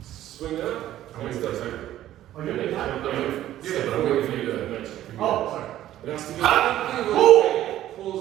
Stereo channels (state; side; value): quieter; left; 13.1 dB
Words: swing up, and it's done. Oh, you're making that? Yeah, but I'm waiting for you to mention. Oh, sorry. It has to be